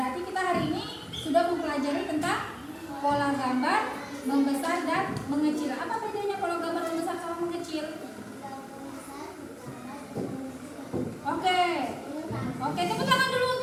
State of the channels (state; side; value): identical; both; correlation 1.00